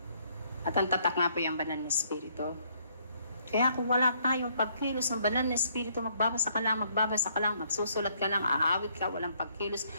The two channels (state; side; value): inverted; both; correlation -0.68